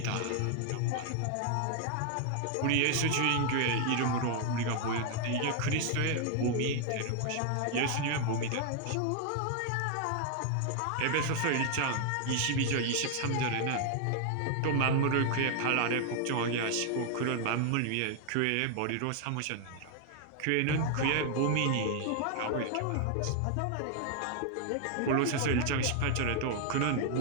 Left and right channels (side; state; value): both; different; correlation 0.00